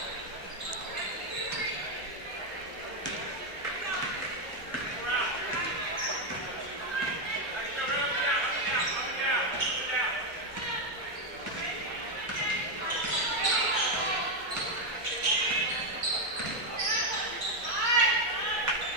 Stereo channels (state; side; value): normal; both; correlation 0.04